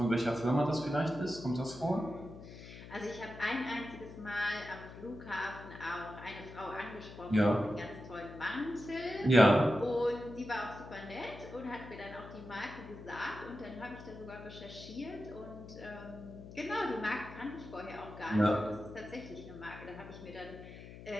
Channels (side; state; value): left; noise; hum, 14 dB below the sound